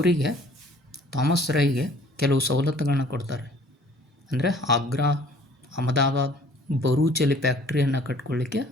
ಥಾಮಸ್ ರಾಯ್ಗೆ ಕೆಲವು ಸವಲತ್ತುಗಳನ್ನ ಕೊಡ್ತಾರೆ. ಅಂದರೆ ಆಗ್ರಾ, ಅಹಮದಾಬಾದ್, ಬರೂಚಲ್ಲಿ ಫ್ಯಾಕ್ಟ್ರಿಯನ್ನು ಕಟ್ಕೊಳ್ಳಿಕ್ಕೆ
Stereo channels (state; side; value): normal; both; correlation 0.54